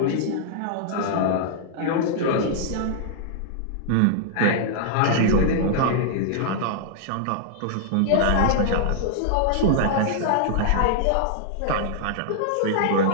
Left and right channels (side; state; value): both; different; correlation -0.01